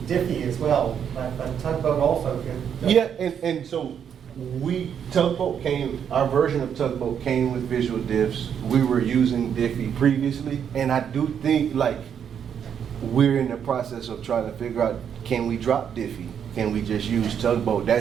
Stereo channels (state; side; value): quieter; left; 8.2 dB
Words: Diffie as well, but Tugboat also could. Yeah, and so our version of Tugboat came with visual diffs. We were using Diffie previously, and I do think like we're in the process of trying to figure out, can we drop Diffie? Can we just use Tugboat?